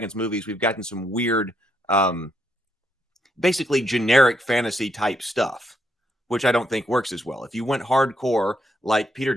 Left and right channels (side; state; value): both; normal; correlation 0.77